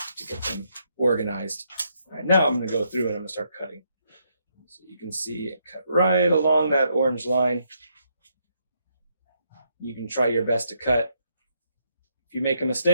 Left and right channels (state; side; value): inverted; both; correlation -0.75